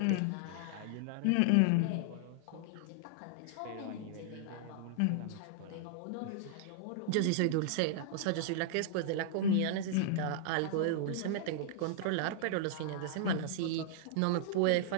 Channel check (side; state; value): both; different; correlation -0.01